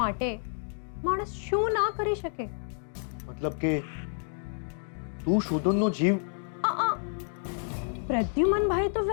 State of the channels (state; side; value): silent; right; 58 dB below the other